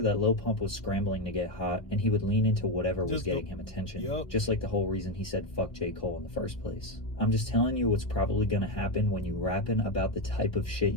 that Lil Pump was scrambling to get hot, and he would lean into whatever was getting him attention, just like the whole reason he said fuck J. Cole in the first place. I'm just telling you what's probably gonna happen when you rapping about the type of shit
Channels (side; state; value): right; late; 1.2 ms